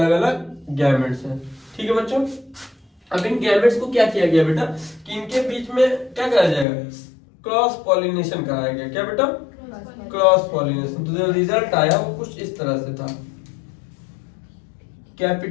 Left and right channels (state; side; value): drops out; right; at 6.7 s